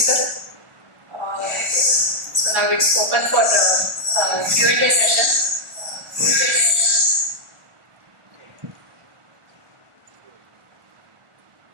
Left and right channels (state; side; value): late; left; 1.4 ms